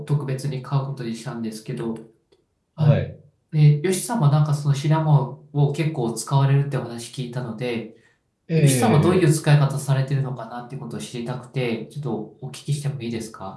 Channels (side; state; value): both; identical; correlation 1.00